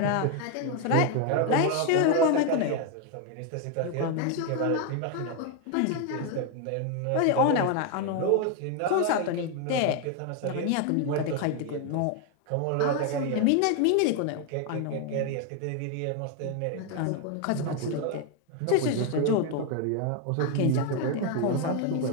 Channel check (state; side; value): different; both; correlation 0.01